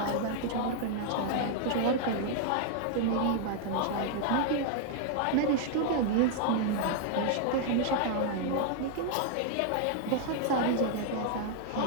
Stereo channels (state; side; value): different; both; correlation -0.01